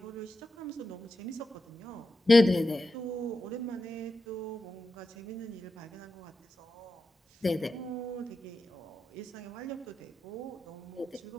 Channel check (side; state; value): both; normal; correlation 0.90